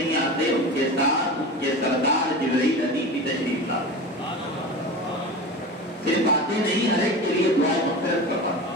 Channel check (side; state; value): both; normal; correlation 0.30